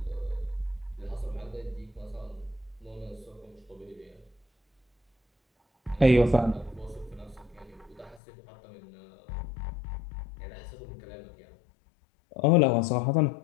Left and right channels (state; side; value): drops out; right; at 8.2 s